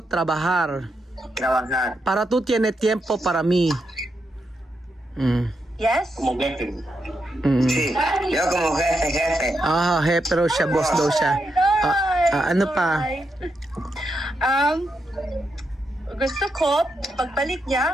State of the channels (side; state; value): both; normal; correlation 0.83